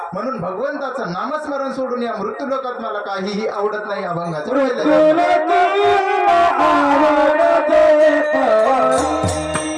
म्हणून भगवंताचं नामस्मरण सोडून या मृत्यू लोकात मला काहीही आवडत नाही. अभंगाचं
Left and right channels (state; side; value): identical; both; correlation 1.00